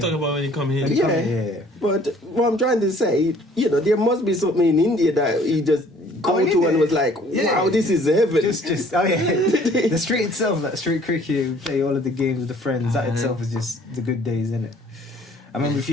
talking about when you come here. Yeah, but what I'm trying to say, you know, there must be something in India that he just go to and was like, wow, this is heaven. Just oh yeah, the street itself, like street cricket, we play all of the games with the friends. That itself is just the good days, isn't it? I remember if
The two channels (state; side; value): normal; both; correlation 0.56